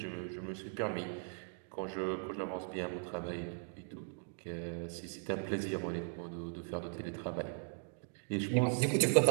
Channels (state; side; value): silent; left; 52 dB below the other